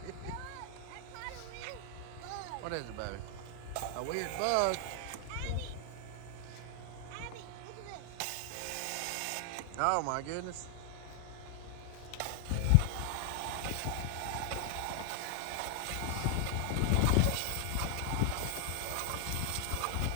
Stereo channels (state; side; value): different; both; correlation 0.00